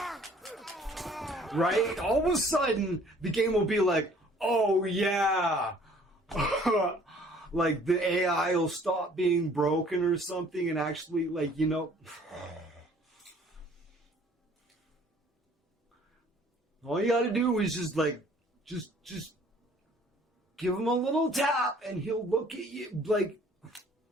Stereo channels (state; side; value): normal; both; correlation 0.56